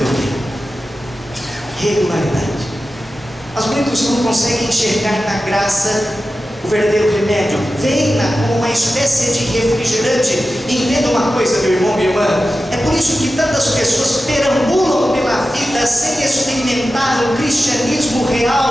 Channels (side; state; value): both; normal; correlation 0.93